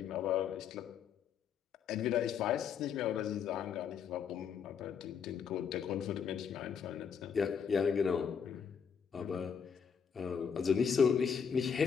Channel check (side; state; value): right; quieter; 7.0 dB